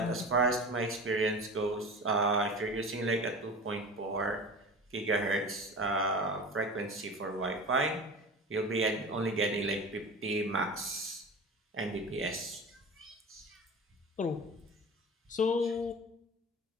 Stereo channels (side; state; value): both; normal; correlation 0.34